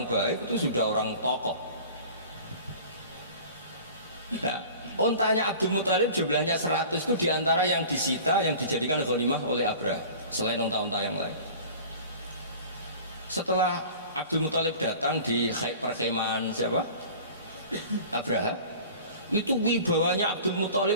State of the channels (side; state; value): both; inverted; correlation -0.42